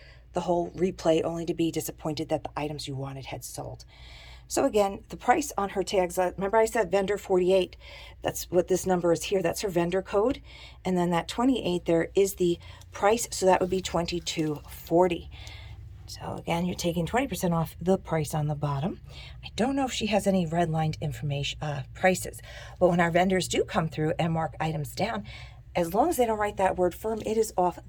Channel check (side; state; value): both; identical; correlation 1.00